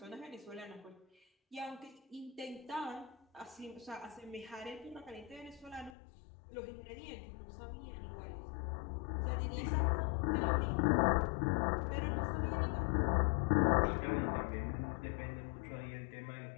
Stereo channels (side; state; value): right; drops out; at 6.0 s